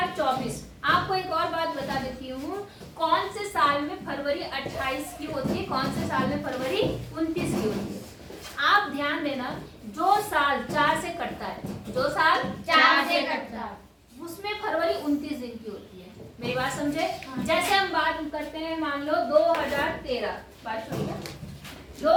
आपको एक और बात बता देती हूँ, कौन से साल में फरवरी 28 की होती है, कौन से साल में फरवरी 29 की होती है? आप ध्यान देना, जो साल 4 से कटता है, जो साल 4 से कटता है, उसमें फरवरी 29 दिन की होती है। मेरी बात समझे? जैसे हम बात करते हैं, मान लो 2013, बात सुनिए,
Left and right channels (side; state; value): both; identical; correlation 1.00